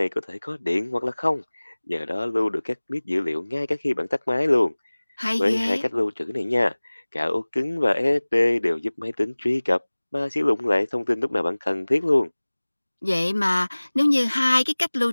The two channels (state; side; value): inverted; both; correlation -1.00